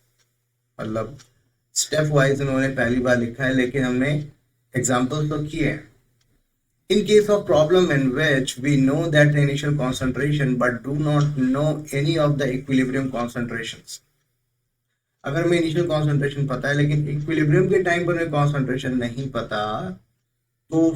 मतलब स्टेप वाइज उन्होंने पहली बार लिखा है, लेकिन हमने एग्जाम्पल्स तो किए हैं। In case of problem in which we know that the initial concentration but do not know any of the equilibrium concentrations, अगर हमें इनिशियल कॉन्सेंट्रेशन पता है लेकिन इक्विलिब्रियम के टाइम पर हमें कॉन्सेंट्रेशन नहीं पता, तो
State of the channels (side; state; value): both; identical; correlation 1.00